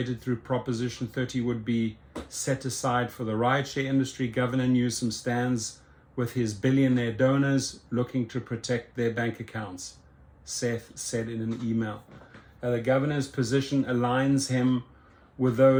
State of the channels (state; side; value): identical; both; correlation 1.00